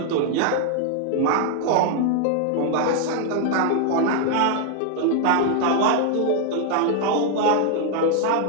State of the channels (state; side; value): different; both; correlation 0.00